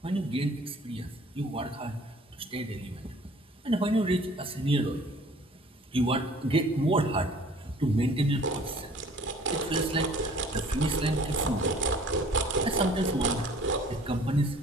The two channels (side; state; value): both; normal; correlation 0.52